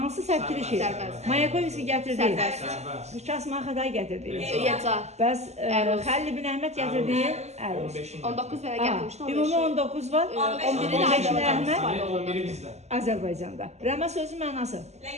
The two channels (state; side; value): late; left; 0.32 ms